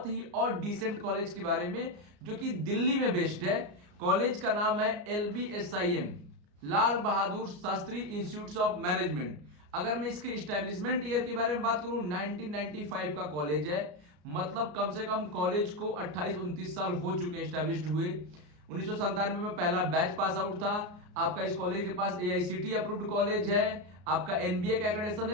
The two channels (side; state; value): left; late; 34 ms